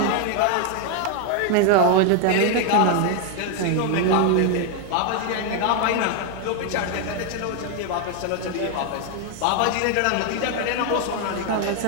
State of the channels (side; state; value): both; different; correlation 0.00